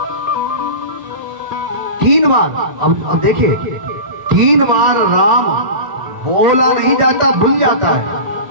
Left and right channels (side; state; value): left; late; 1.4 ms